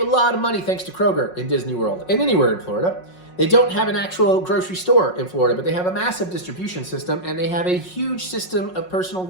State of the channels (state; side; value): late; right; 5.5 ms